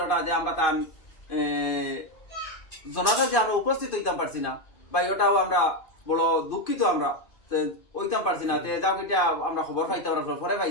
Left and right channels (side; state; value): right; late; 2.5 ms